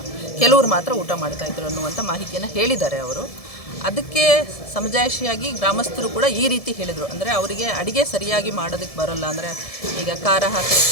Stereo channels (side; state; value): right; late; 1.7 ms